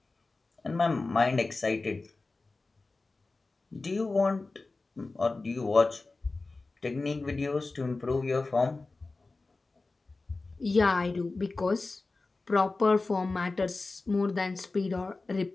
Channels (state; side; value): quieter; right; 3.5 dB